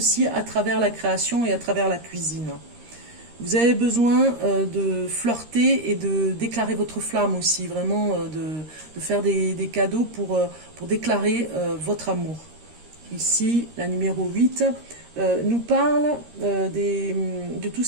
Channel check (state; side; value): late; left; 13 ms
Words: à travers la création et à travers la cuisine. Vous avez besoin de flirter et de déclarer votre flamme aussi, vraiment de faire des cadeaux pour déclarer votre amour. Ici, la numéro 8 nous parle de tout